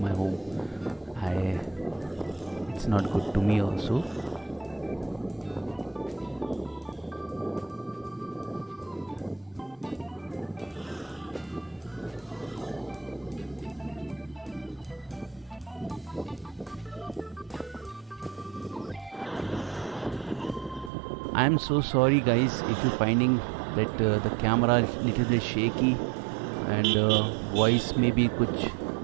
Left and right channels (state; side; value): drops out; left; at 20.9 s